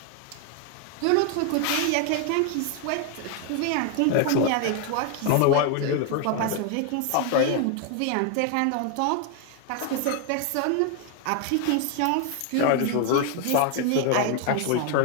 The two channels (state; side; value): different; both; correlation 0.00